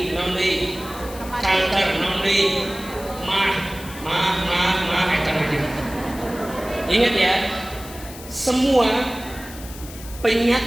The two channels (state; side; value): noise; left; hiss, 16 dB below the sound